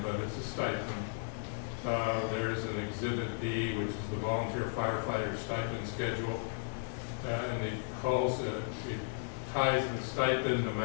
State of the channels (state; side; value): silent; right; 54 dB below the other